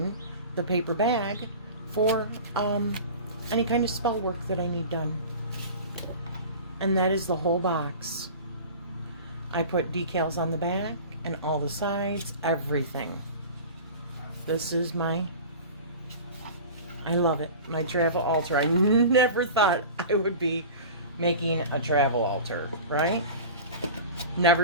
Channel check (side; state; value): both; inverted; correlation -0.36